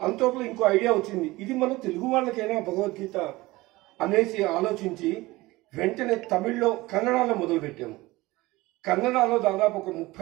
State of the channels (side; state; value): left; quieter; 20.1 dB